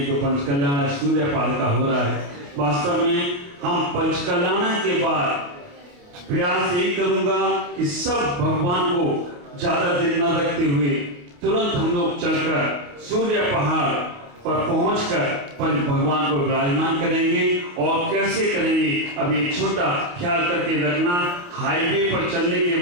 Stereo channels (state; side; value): late; left; 28 ms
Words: जो पंचकल्याण सूर्य पाल का हो रहा है, वास्तव में हम पंचकल्याण के बाद प्रयास यही करूंगा कि सब भगवान को ज्यादा दिन न रखते हुए तुरंत हम लोग चलकर सूर्य पहाड़ पर पहुंचकर पंच भगवान को विराजमान करेंगे। और कैसे करेंगे, अब एक छोटा ख्याल करके रखना, हाईवे पर चलने के